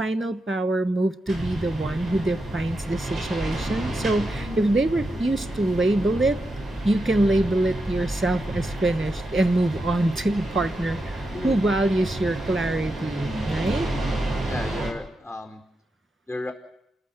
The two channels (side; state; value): both; normal; correlation 0.87